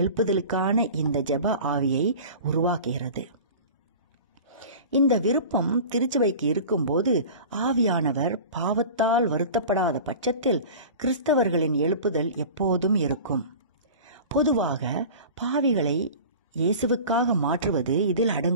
இந்த ஜெப ஆவியை உருவாக்குகிறது. இந்த விருப்பம் திருச்சபைக்கு இருக்கும்போது ஆவியானவர் பாவத்தால் வருத்தப்படாத பட்சத்தில் கிறிஸ்தவர்களின் எழுப்புதல் எப்போதும் இருக்கும். பொதுவாக பாவிகளை இயேசுவுக்காக மாற்றுவது இதில்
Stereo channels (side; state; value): both; inverted; correlation -0.37